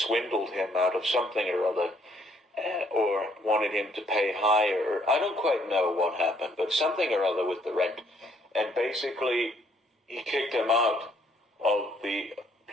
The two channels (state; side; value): normal; both; correlation 0.66